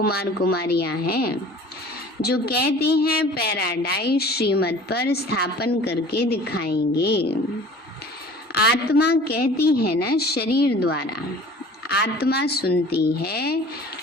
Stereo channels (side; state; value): both; normal; correlation 0.45